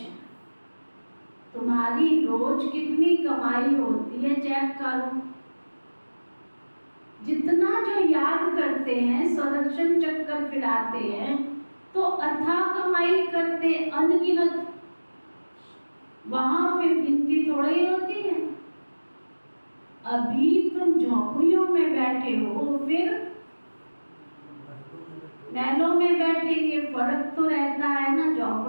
तुम्हारी रोज कितनी कमाई होती है चेक करो। जितना जो याद करते हैं, संरक्षण चक्कर फिराते हैं, तो अथाह कमाई करते अनगिनत। वहां फिर गिनती थोड़ी होती है। अभी तुम झोपड़ियों में बैठे हो, फिर महलों में बैठेंगे। फर्क तो रहता है ना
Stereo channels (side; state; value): both; inverted; correlation -1.00